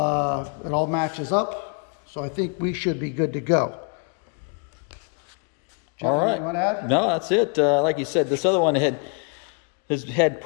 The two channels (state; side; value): quieter; right; 38.8 dB